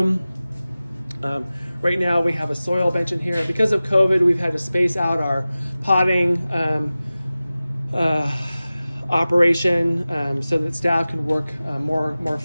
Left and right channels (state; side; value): inverted; both; correlation -0.96